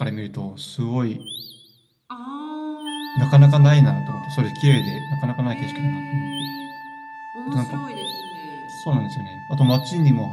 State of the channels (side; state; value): both; identical; correlation 1.00